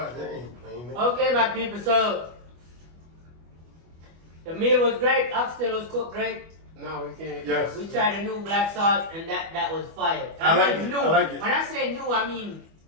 ain't playing. okay, my people. So the meal was great. Oxtail was cooked great. No, we can't. Yes. We tried a new black salt, and that was fire. I like mean it, New. I like it. When I say new, I mean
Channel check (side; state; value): left; late; 25 ms